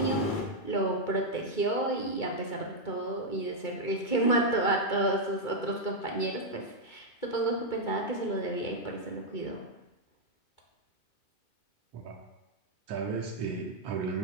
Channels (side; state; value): right; late; 2.2 ms